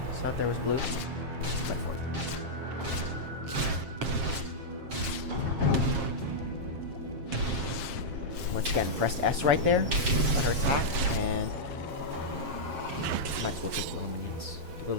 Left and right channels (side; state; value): left; late; 7.5 ms